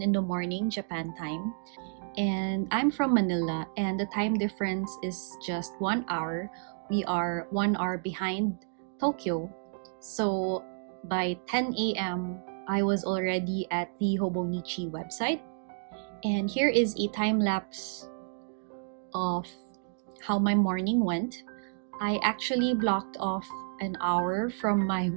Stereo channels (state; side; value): silent; left; digital silence